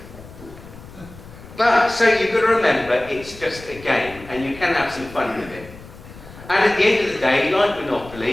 But, so you've got to remember, it's just a game, and you can have some fun with it. And at the end of the day, like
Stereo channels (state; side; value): noise; left; rumble, 18 dB below the sound